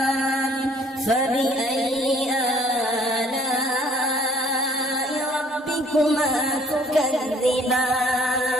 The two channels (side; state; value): both; normal; correlation 0.60